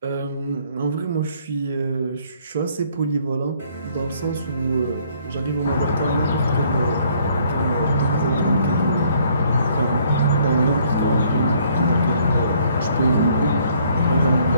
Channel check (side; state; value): both; inverted; correlation -0.63